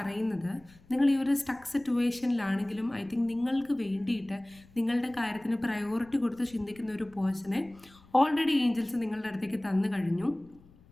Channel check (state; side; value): noise; left; rumble, 26 dB below the sound